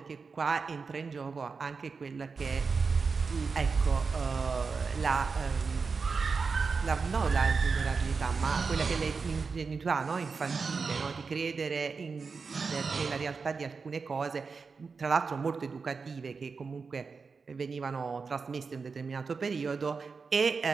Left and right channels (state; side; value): quieter; left; 4.9 dB